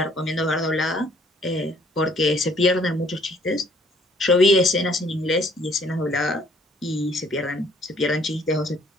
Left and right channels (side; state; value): both; normal; correlation 0.61